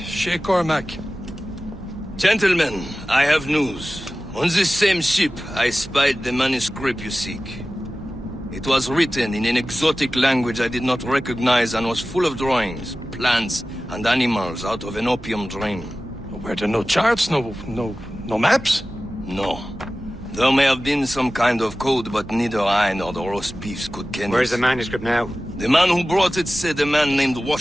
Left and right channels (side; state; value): right; noise; hum, 18 dB below the sound